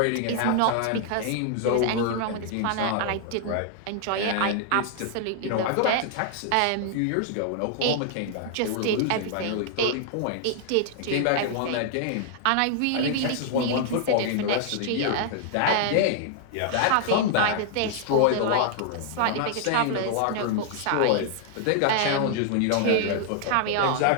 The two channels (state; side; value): different; both; correlation 0.00